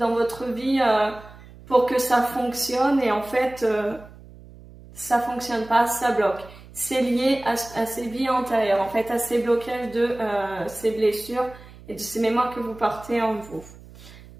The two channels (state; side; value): noise; right; hum, 20 dB below the sound